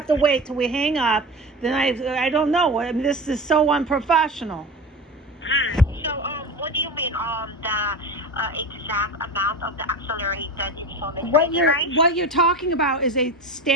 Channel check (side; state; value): both; normal; correlation 0.28